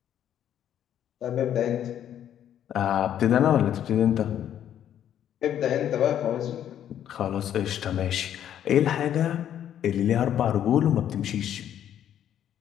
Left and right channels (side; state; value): right; quieter; 10.4 dB